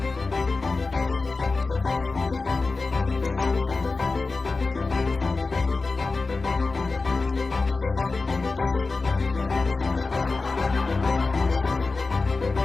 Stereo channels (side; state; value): right; quieter; 3.8 dB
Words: And I wouldn't have it any other way. And I'm so happy that you found somebody that can keep up with you.